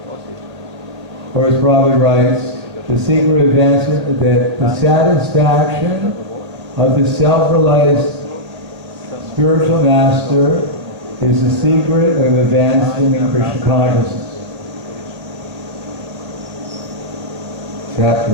Or as Prabhupada writes, the secret of advancement, that the satisfaction of the self-realized spiritual master is the secret of advancement in Krishna consciousness.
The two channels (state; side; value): late; left; 1.8 ms